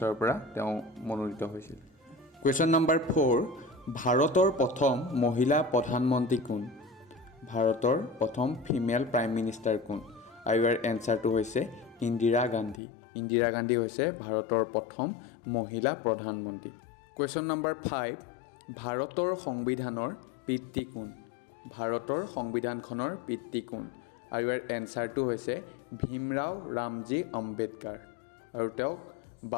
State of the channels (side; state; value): right; drops out; at 12.8 s